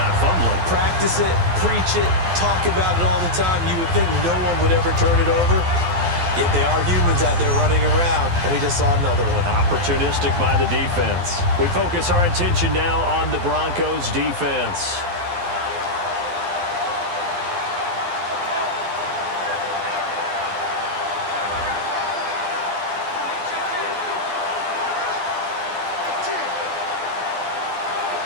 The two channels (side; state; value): left; late; 12 ms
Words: fumbling. Practice it, preach it, talk about it all the time. You would think no one would ever turn it over. Yet they are humans out there running around, and we just saw another one. Opportunistic by the defense. We focus our attention now on the Broncos defense.